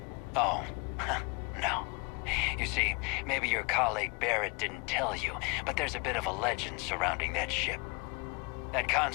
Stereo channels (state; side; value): quieter; right; 30.6 dB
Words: Oh, no. You see, maybe your colleague Barrett didn't tell you, but there's a bit of a legend surrounding that ship. That